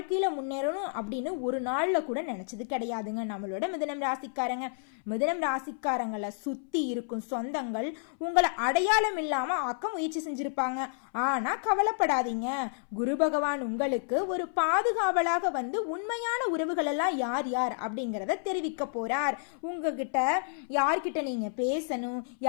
முன்னேறணும் அப்படின்னு ஒரு நாள்ல கூட நினைச்சது கிடையாதுங்க நம்மளோட மிதுனம் ராசிக்காரங்க. மிதுனம் ராசிக்காரங்களை சுத்தி இருக்கும் சொந்தங்கள் உங்களை அடையாளம் இல்லாம ஆக்க முயற்சி செஞ்சிருப்பாங்க. ஆனா கவலைப்படாதீங்க, குரு பகவான் உங்களுக்கு ஒரு பாதுகாவலாக வந்து உண்மையான உறவுகள் எல்லாம் யார் யார் அப்படிங்கறத தெரிவிக்க போறார். உங்ககிட்ட யார்கிட்ட நீங்க பேசணும்,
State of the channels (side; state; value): right; silent; 58 dB below the other